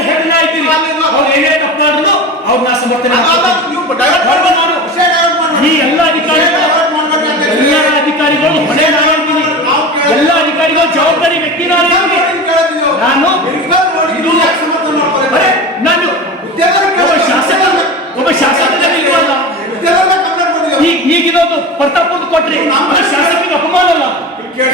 ಹೇಳಿಲ್ಲ ಇದ್ದೀನಿ. ಅವ್ರು ಏನೇ ತಪ್ಪು ಮಾಡಿದ್ರು ಅವ್ರು ನಾ ಸಮರ್ಥನೆ ಈ ಎಲ್ಲ ಅಧಿಕಾರಿಗಳು ಹೊಣೆ ನಾನಿದ್ದೀನಿ. ಎಲ್ಲ ಅಧಿಕಾರಿಗಳು ಜವಾಬ್ದಾರಿ ವ್ಯಕ್ತಿ ನಾನು. ಒಬ್ಬ ಶಾಸಕರಲ್ಲಿ ಇರುವಲ್ಲ, ಈಗಿರೋದು ಪ್ರತಾಪಂದು ಕೊಟ್ರಿ ಶಾಸಕರಿಗೆ ಅಪಮಾನ ಅಲ್ಲ.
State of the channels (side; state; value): both; normal; correlation 0.30